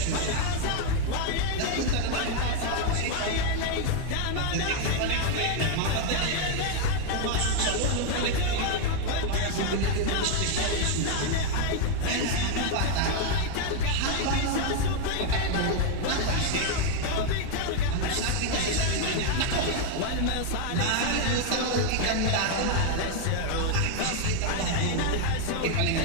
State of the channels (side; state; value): both; different; correlation 0.01